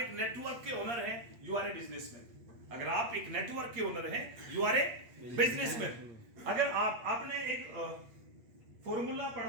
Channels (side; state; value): left; late; 8.4 ms